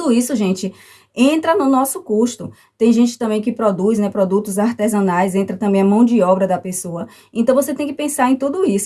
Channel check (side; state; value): both; identical; correlation 1.00